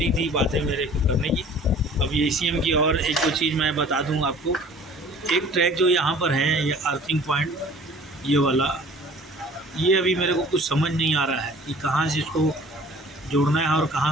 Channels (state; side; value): normal; both; correlation 0.49